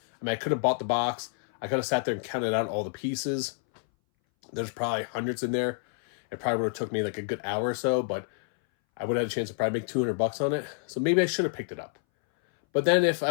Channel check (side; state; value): right; silent; 59 dB below the other